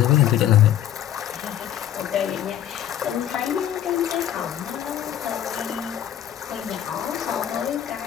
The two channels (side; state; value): right; quieter; 11.1 dB